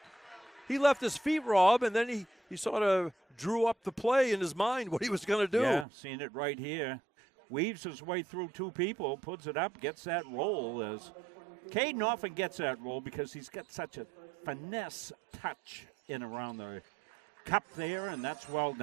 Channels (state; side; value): drops out; left; at 5.9 s